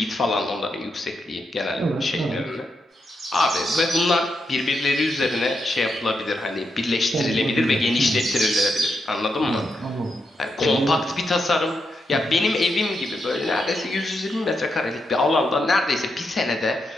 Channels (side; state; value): both; normal; correlation 0.83